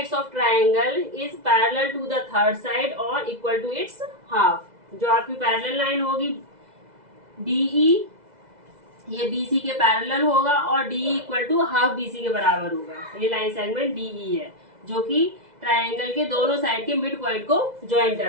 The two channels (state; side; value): late; left; 2.0 ms